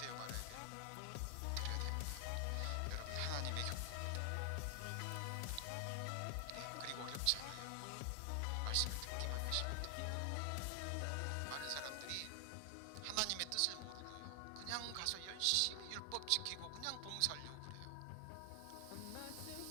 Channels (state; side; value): different; both; correlation 0.00